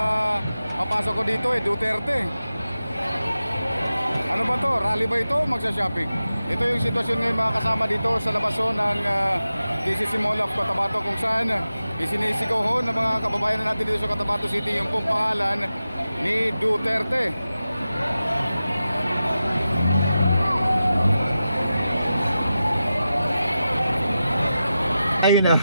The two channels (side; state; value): both; inverted; correlation -0.92